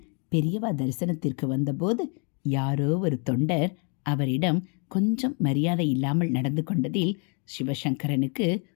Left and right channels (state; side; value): quieter; right; 37.1 dB